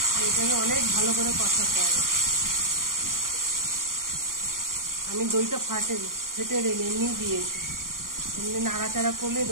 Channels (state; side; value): late; left; 0.91 ms